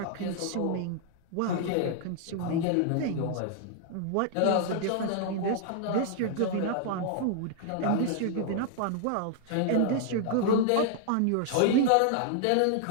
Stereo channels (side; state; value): both; different; correlation 0.00